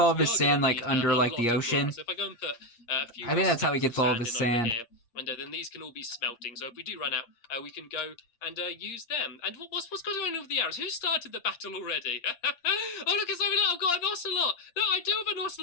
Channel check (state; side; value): late; right; 8.6 ms